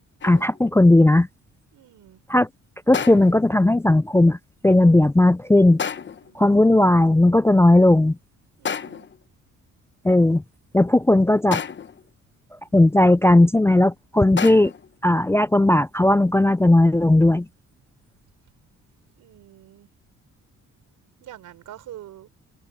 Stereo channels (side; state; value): both; normal; correlation 0.94